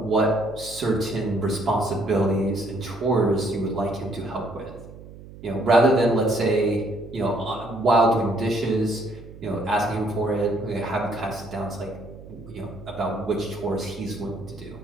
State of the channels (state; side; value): noise; right; hum, 17 dB below the sound